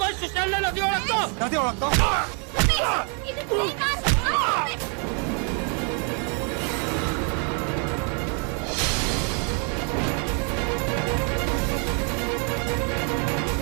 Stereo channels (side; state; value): left; quieter; 38.7 dB